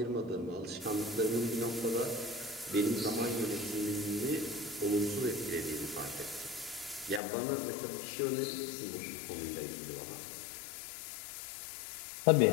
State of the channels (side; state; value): right; drops out; at 7.2 s